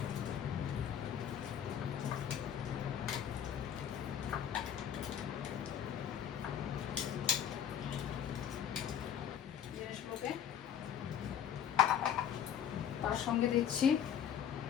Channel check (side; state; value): right; quieter; 9.1 dB